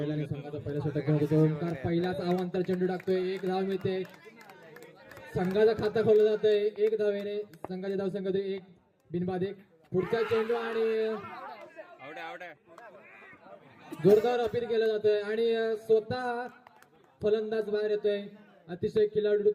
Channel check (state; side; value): identical; both; correlation 1.00